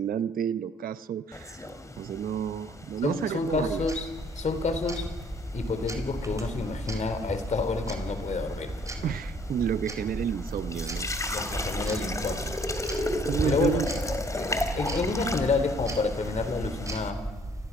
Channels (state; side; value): normal; both; correlation 0.60